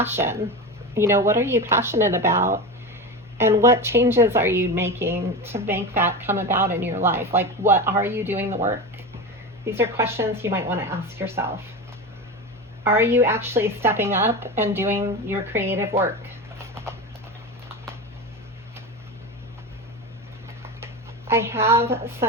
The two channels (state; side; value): normal; both; correlation 0.23